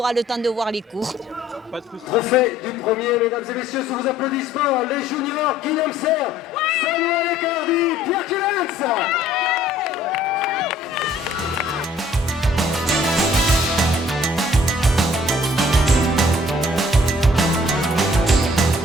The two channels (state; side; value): normal; both; correlation 0.58